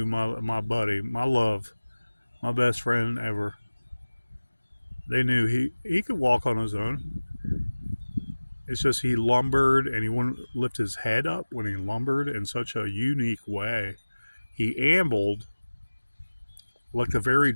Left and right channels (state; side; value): inverted; both; correlation -1.00